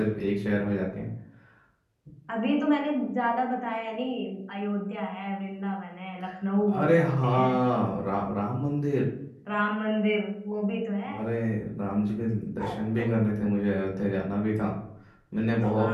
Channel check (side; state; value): both; identical; correlation 1.00